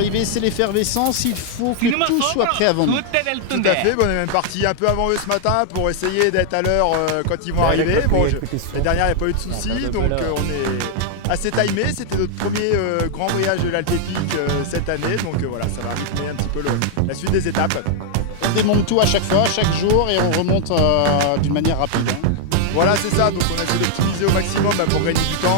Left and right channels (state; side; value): different; both; correlation 0.00